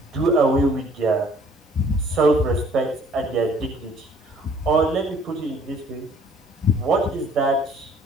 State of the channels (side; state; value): both; normal; correlation 0.57